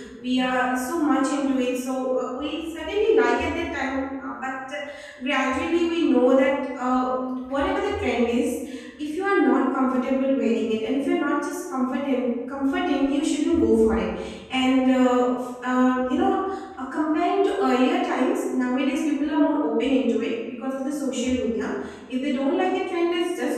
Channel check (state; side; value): identical; both; correlation 1.00